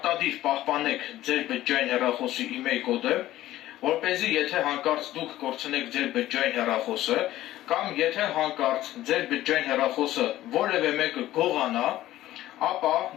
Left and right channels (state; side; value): quieter; right; 14.7 dB